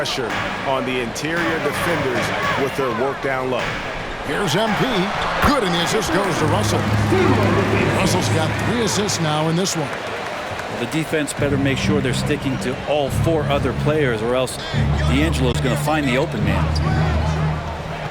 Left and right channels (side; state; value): both; identical; correlation 1.00